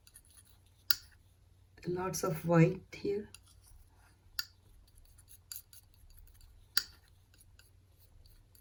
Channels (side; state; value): both; identical; correlation 1.00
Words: Lots of white here.